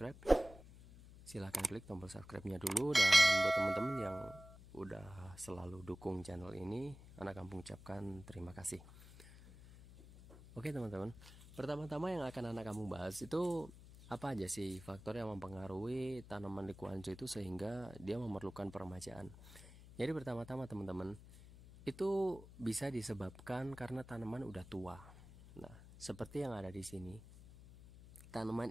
silahkan klik tombol subscribe-nya dulu, dan buat teman-teman yang udah selalu dukung channel ini, anak kampung ucapkan terima kasih. Oke teman-teman, pertama-tama yang akan anak kampung bahas itu apa aja sih faktor yang mempengaruhi tanaman Likuanzu itu sehingga dia memerlukan peremajaan. Jadi pertama-tama teman-teman, itu bisa disebabkan karena tanaman udah tua. Nah, seperti yang ada di sini,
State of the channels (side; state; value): left; noise; hum, 18 dB below the sound